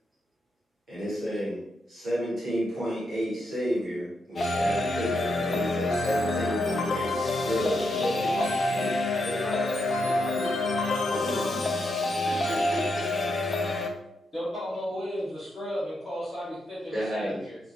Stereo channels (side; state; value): both; normal; correlation 0.82